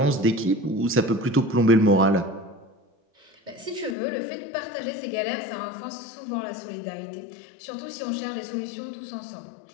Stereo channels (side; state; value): right; drops out; at 4.0 s